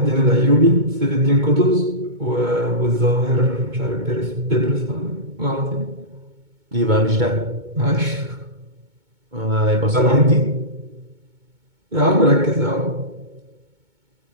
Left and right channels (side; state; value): left; late; 2.2 ms